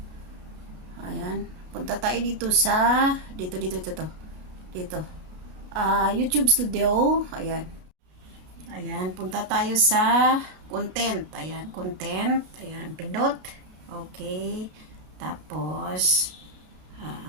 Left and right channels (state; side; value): late; left; 32 ms